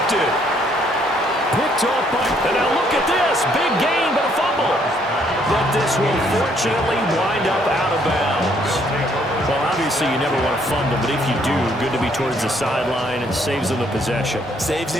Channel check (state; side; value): normal; both; correlation 0.67